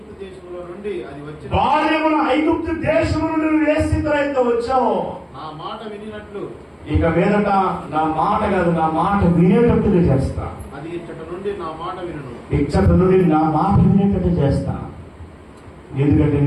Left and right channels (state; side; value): identical; both; correlation 1.00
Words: దేశములో నుండి నువ్వు ఏ స్థితిలో అయితే వచ్చావో నా మాట వినినట్లు ఇక మీదట నా మాట కాదు, నా మాట వినేటట్టుగా చేస్తా. అది ఇచ్చట నుండి నా మాట వినేటట్టు చేస్తా. ఎందుకంటే